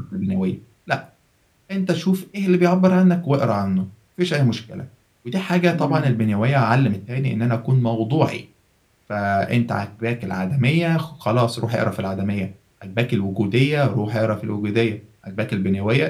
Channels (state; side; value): identical; both; correlation 1.00